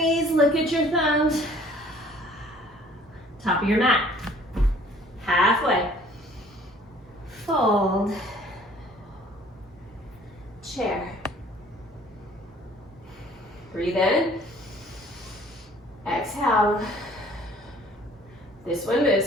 look at your thumbs. Top of your mat. Halfway. Fold. Chair. Breathe in. Exhale. This one moves.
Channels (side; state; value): both; normal; correlation 0.55